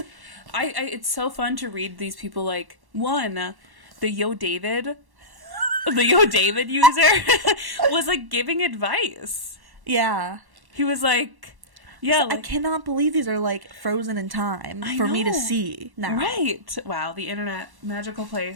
it's so fun to read these people, like the Yo David user was like giving advice. Yeah. He was like, yeah, I cannot believe these are like frozen in time for me to see now. Right. Wow, the internet, magical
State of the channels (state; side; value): late; left; 1.1 ms